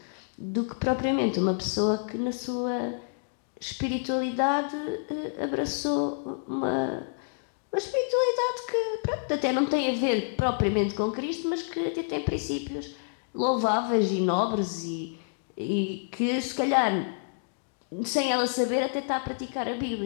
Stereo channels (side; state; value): right; silent; digital silence